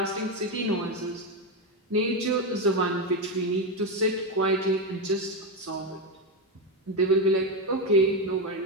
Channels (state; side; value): normal; both; correlation 0.10